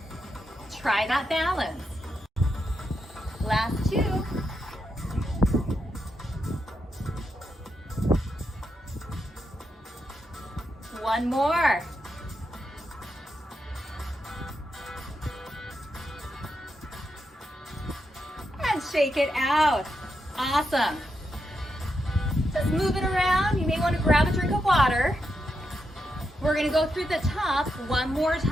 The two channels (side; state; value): both; normal; correlation 0.84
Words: try that balance. Last two. One more. And shake it out. Awesome. Just move it around. You may want to grab a drink of water. We're going to go through the top one more